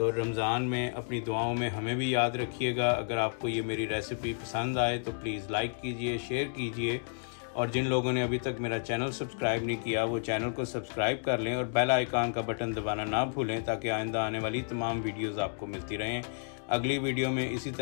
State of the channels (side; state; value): right; silent; digital silence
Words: रमज़ान में अपनी दुआओं में हमें भी याद रखिएगा। अगर आपको ये मेरी रेसिपी पसंद आए तो प्लीज़ लाइक कीजिए, शेयर कीजिए, और जिन लोगों ने अभी तक मेरा चैनल सब्सक्राइब नहीं किया वो चैनल को सब्सक्राइब कर लें और बेल आइकन का बटन दबाना ना भूलें, ताकि आइंदा आने वाली तमाम वीडियोज़ आपको मिलती रहें। अगली वीडियो में इसी